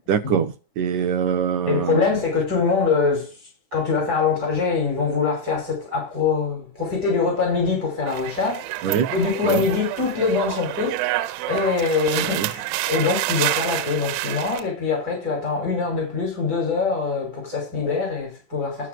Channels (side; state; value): left; late; 12 ms